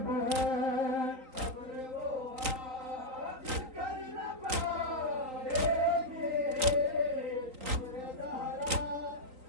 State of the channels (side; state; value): left; late; 3.9 ms